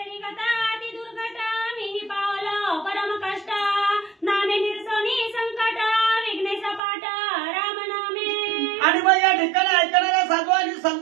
कथा अति दुर्घट मीही पावलो परम कष्ट, नामे निर्सोनी संकट विघ्ने सपाट राम नामे. आणि मग या ठिकाणी ऐकणाऱ्या साधू आणि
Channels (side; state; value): left; drops out; at 6.8 s